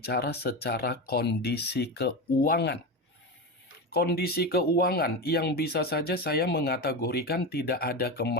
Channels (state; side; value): normal; both; correlation 0.19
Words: secara kondisi keuangan. Kondisi keuangan yang bisa saja saya mengategorikan tidak ada